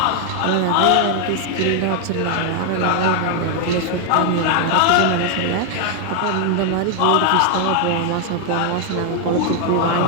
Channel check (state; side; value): different; both; correlation 0.00